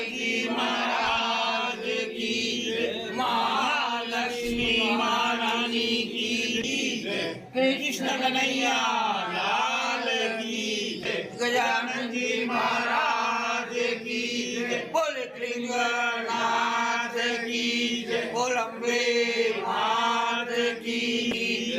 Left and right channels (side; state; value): both; identical; correlation 1.00